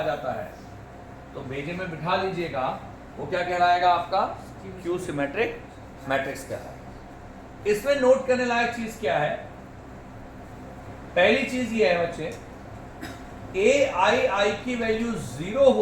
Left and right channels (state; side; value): identical; both; correlation 1.00